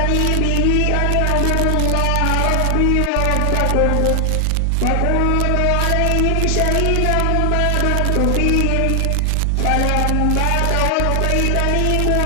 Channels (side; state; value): both; different; correlation 0.00